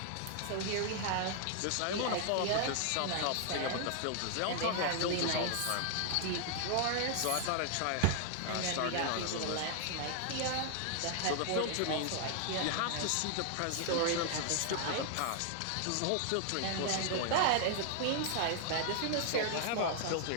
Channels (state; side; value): different; both; correlation 0.00